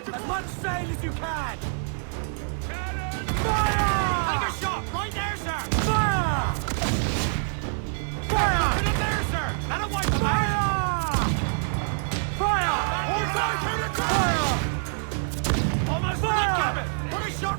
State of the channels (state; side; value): silent; left; 61 dB below the other